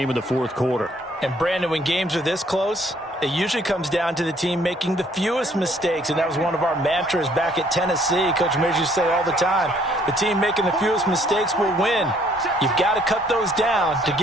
in the 4th quarter. And Brandon, when games are this close, it usually comes down to the team making the fewest mistakes, and that was one of our mantras back at Tennessee. Coach Mears used to say all the time, the team making the fewest mistakes will win. You've got to cut those down to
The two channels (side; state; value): both; normal; correlation 0.63